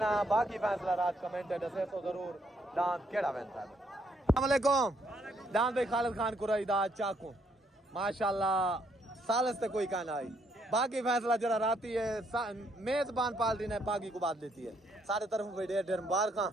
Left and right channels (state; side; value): normal; both; correlation 0.71